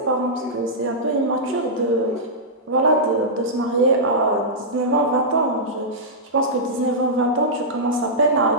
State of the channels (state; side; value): normal; both; correlation -0.11